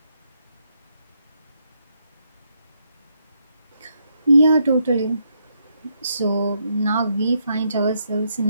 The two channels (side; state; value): both; inverted; correlation -0.78